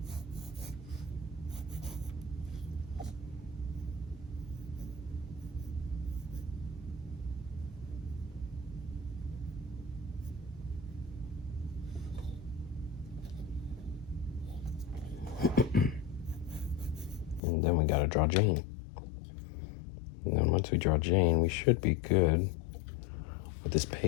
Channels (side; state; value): right; drops out; at 17.4 s